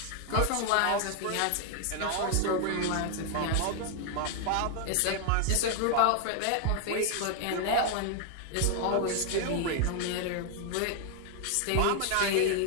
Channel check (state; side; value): different; both; correlation 0.00